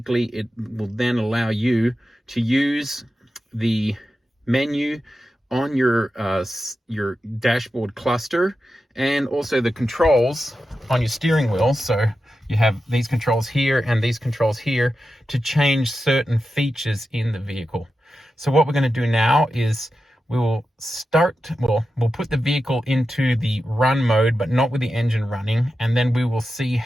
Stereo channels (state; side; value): normal; both; correlation 0.91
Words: it will then allow you to use the menu on your dashboard cluster, and also the controls on your steering wheel. So you have these controls here and these controls here to change certain features in the vehicle. So what we're going to do now is we'll put the vehicle into the run mode, but not with the engine running, and then we will see